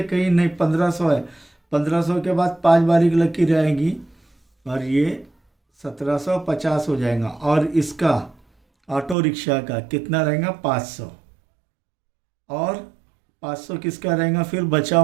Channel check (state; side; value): drops out; left; at 9.2 s